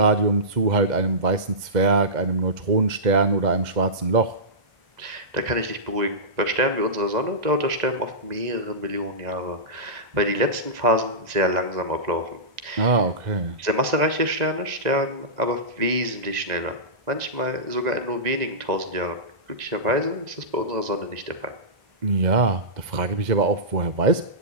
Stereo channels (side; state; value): left; late; 1.9 ms